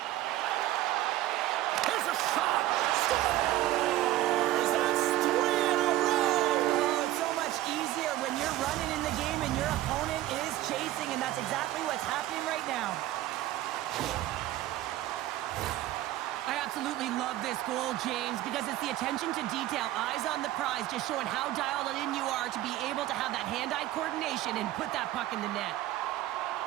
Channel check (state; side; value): quieter; left; 14.9 dB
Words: Here's a shot. Scores! That's 3 in a row. Oh, it's so much easier when you're running in the game and your opponent is chasing, and that's exactly what's happening right now. I absolutely love this goal, James, because it's the attention to detail, eyes on the prize, just showing how dialed in you are to be able to have that hand-eye coordination and put that puck in the net.